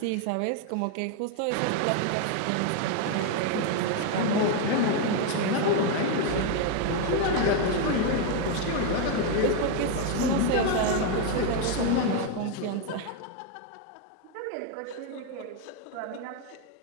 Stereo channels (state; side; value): different; both; correlation 0.01